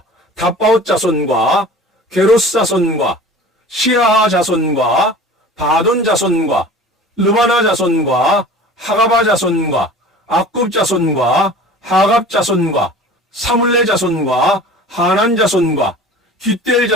다바옷 자손과 게로스 자손과 시아하 자손과 바돈 자손과 르바나 자손과 하가바 자손과 악굽 자손과 하갑 자손과 사물레 자손과 하난 자손과 깃델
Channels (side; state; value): both; normal; correlation 0.41